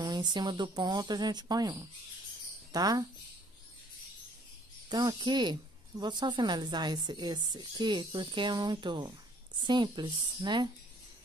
Em cima do ponto, a gente põe um, tá? Então, aqui, vou só finalizar esse aqui, porque é muito simples, né?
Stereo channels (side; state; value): both; normal; correlation 0.60